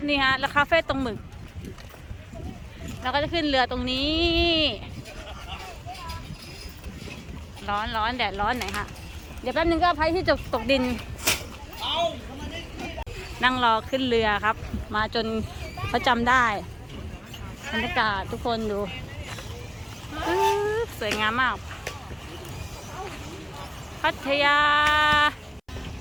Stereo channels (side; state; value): both; identical; correlation 1.00